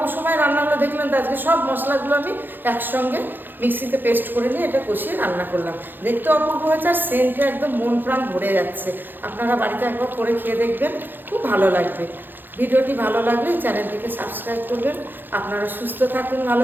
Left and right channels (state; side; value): late; left; 0.093 ms